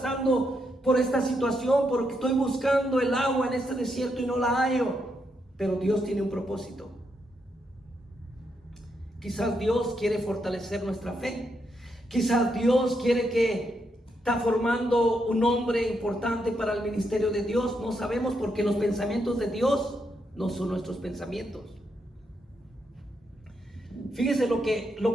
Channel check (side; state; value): both; normal; correlation 0.80